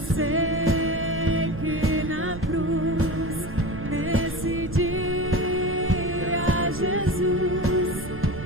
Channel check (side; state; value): right; noise; rumble, 12 dB below the sound